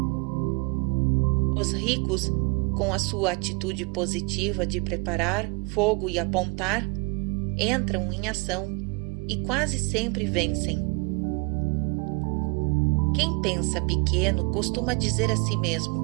Os ricos, com a sua atitude positiva de preparar fogo e apontar, entram em ação e quase sempre vencem. Quem pensa pequeno costuma dizer a si mesmo:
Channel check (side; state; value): left; quieter; 31.3 dB